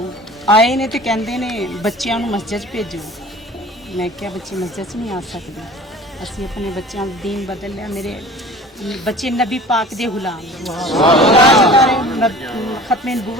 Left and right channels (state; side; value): normal; both; correlation 0.43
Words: आए ने तो कहते ने बच्चों को मस्जिद भेजो। मैं क्या बच्चे मस्जिद नहीं आ सकते? असी अपने बच्चों का दीन बदल लिया। मेरे बच्चे नबी पाक दे गुलाम, खत्मे